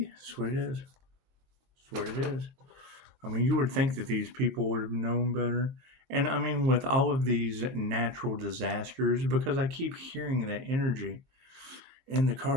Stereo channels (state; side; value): late; left; 22 ms